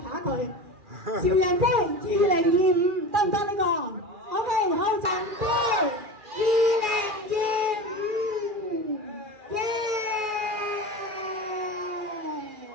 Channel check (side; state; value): left; late; 2.4 ms